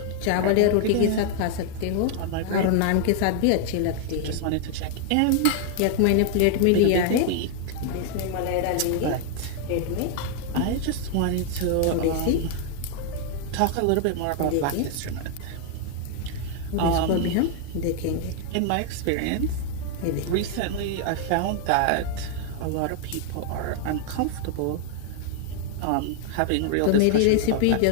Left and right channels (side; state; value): both; different; correlation 0.00